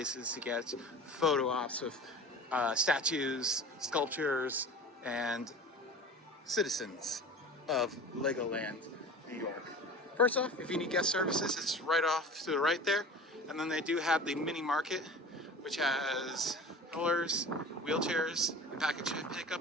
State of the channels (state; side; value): normal; both; correlation 0.37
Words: to get photo ops with statues, sculptures, and citizens of Legoland, New York. First off, if you need guest services, it's right off to the right there. And then they do have the mini market, which has rollers, wheelchairs, and package